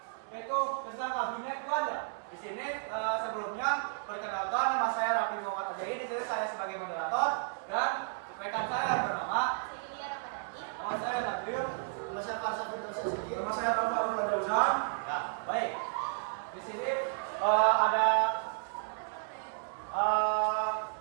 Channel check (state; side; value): silent; left; 56 dB below the other